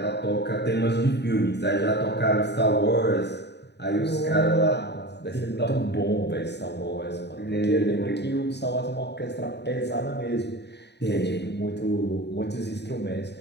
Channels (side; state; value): right; late; 0.50 ms